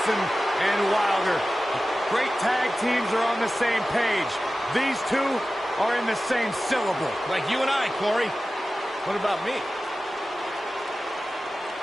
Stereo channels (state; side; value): normal; both; correlation 0.95